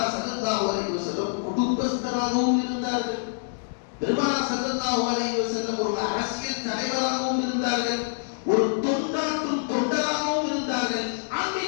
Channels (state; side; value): silent; right; digital silence